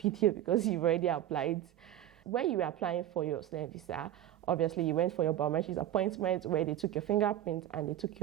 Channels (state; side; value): quieter; left; 12.3 dB